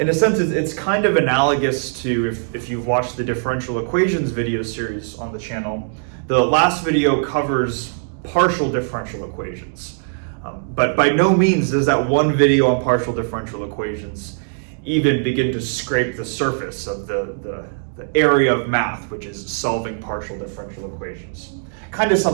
a sense, it's kind of analogous to if you've watched the differential equations video series on the channel. The last video covers partial differential equations. But by no means does that one video on partial differential equations even begin to scrape the surface of the area of math, which is solving partial differential equations. Kind of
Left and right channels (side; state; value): left; silent; digital silence